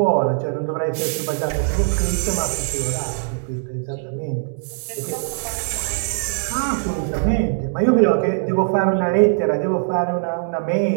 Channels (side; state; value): left; silent; digital silence